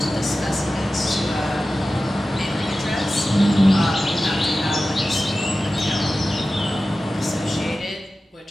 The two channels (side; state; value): both; normal; correlation 0.95